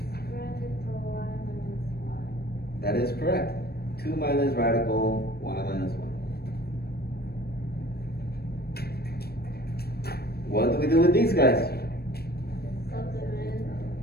radical y minus 1. That is correct. 2 minus radical y minus 1. What do we do with these guys? Plug them in.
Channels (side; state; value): right; late; 0.46 ms